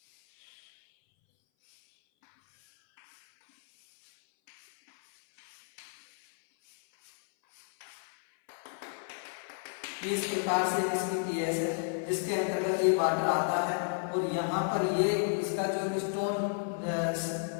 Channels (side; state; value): right; silent; 56 dB below the other